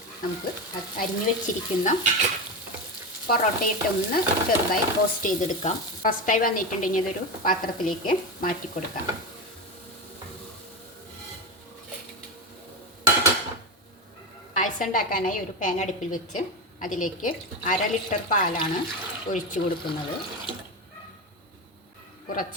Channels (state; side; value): normal; both; correlation 0.18